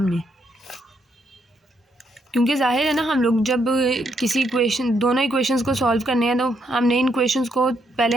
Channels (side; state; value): both; normal; correlation 0.76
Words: क्योंकि जाहिर है ना, हम लोग जब किसी इक्वेशन, दोनों इक्वेशंस को सॉल्व करने हैं तो हमने इन इक्वेशंस को पहले